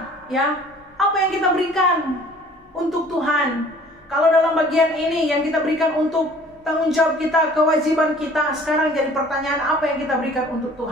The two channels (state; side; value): normal; both; correlation 0.52